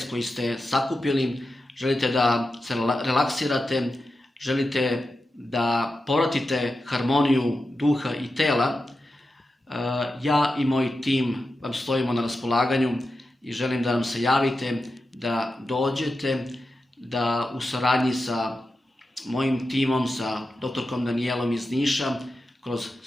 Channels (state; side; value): normal; both; correlation 0.91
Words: koji ste sakupili, želite da se relaksirate, želite da povratite harmoniju duha i tela, ja i moj tim vam stojimo na raspolaganju i želim da nam se javite, da dođete, da u saradnji sa mojim timom, sa doktorkom Danijelom iz Niša, kroz